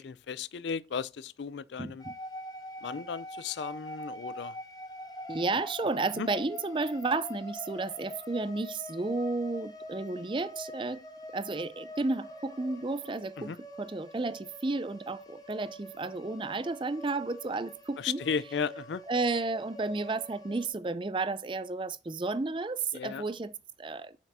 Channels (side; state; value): both; normal; correlation 0.43